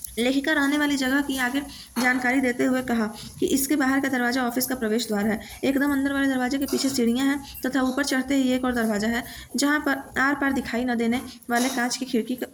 लेखिका रहने वाली जगह की आगे जानकारी देते हुए कहा कि इसके बाहर का दरवाजा ऑफिस का प्रवेश द्वार है। एकदम अंदर वाले दरवाजे के पीछे सीढ़ियां हैं तथा ऊपर चढ़ते ही एक और दरवाजा है, जहां पर आर पार दिखाई न देने वाले कांच की खिड़की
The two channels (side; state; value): both; identical; correlation 1.00